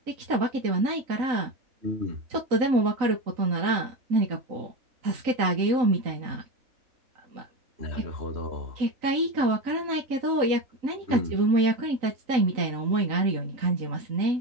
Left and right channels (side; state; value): left; late; 3.9 ms